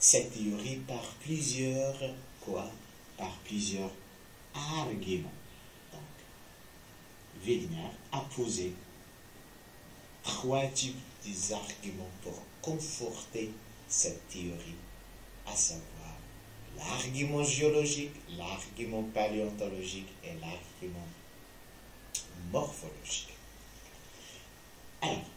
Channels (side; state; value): both; identical; correlation 1.00